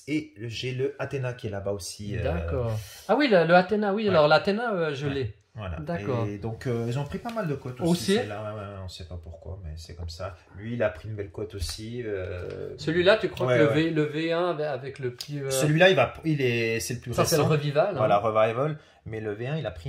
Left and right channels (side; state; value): both; identical; correlation 1.00